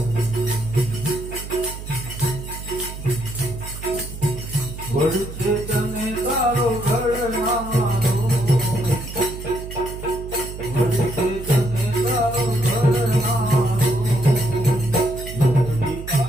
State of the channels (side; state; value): right; noise; hum, 10 dB below the sound